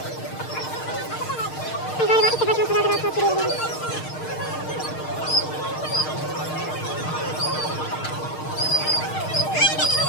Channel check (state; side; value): late; right; 6.5 ms